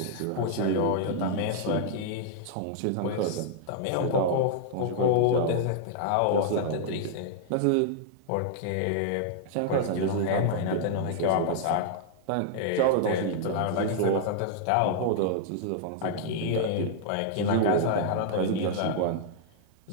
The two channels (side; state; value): both; different; correlation -0.01